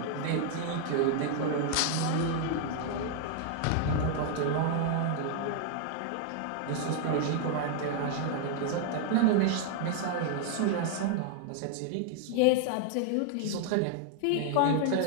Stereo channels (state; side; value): different; both; correlation 0.00